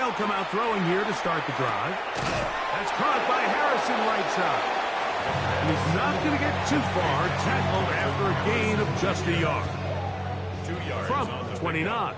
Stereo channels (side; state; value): both; identical; correlation 1.00